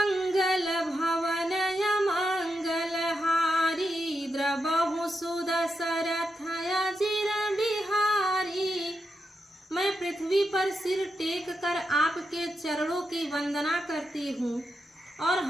भवनय मंगल हारी, द्रबहु सुदशरथ अजिर बिहारी। मैं पृथ्वी पर सिर टेक कर आपके चरणों की वंदना करती हूँ और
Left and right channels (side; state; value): both; normal; correlation 0.86